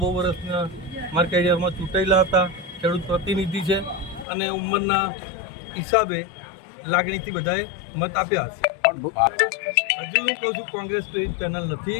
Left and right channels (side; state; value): right; drops out; at 4.2 s